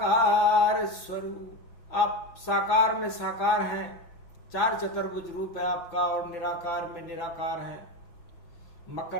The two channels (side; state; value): right; late; 5.9 ms